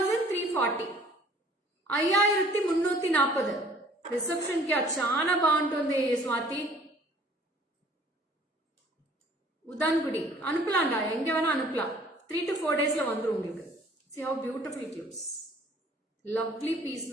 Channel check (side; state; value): both; normal; correlation 0.55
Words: 5340. Reception क्या चाना బాగుంటుంది స్వాతి. ఉదాన్గుడి అనుపలాండా எங்க வேணா அனுப்பலாம். 3 to 4 daysல வந்துரும் உங்களுக்கு. See how beautiful it looks. Lovely piece